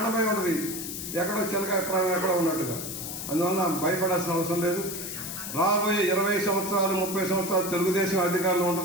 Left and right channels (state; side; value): noise; left; hiss, 7 dB below the sound